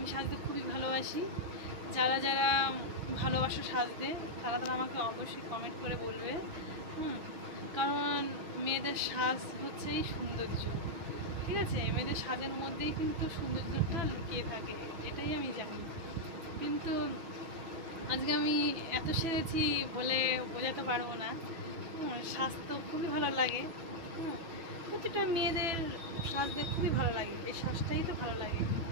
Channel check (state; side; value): late; left; 6.0 ms